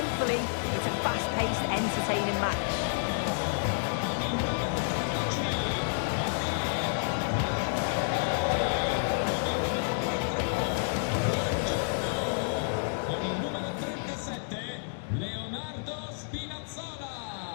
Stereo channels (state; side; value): silent; right; digital silence